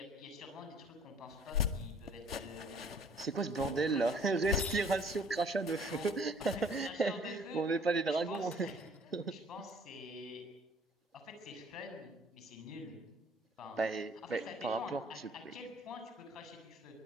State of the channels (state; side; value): normal; both; correlation 0.56